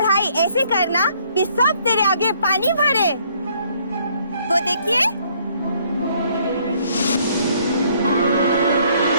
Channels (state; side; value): inverted; both; correlation -0.65